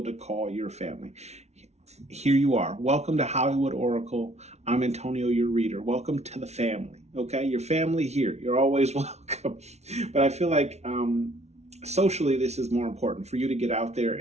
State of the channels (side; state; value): left; late; 0.32 ms